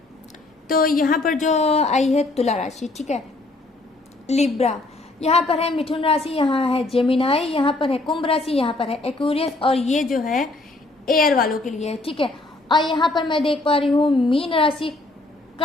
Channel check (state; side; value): quieter; right; 3.0 dB